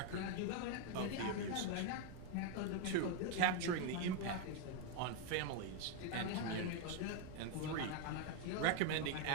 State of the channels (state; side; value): different; both; correlation 0.01